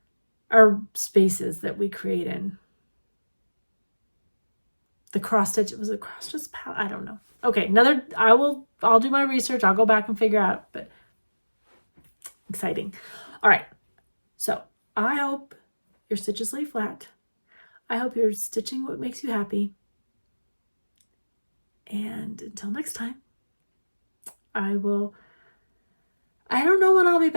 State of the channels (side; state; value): both; inverted; correlation -1.00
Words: Our spaces that we create in. The cross stitch, was it cross stitch? I don't know. Okay, I'll do my research. I'll go back and figure out, but exciting. All right, so I hope your stitches lay flat. I hope you're stitching what makes you happy. And until next time, I don't know when I'll be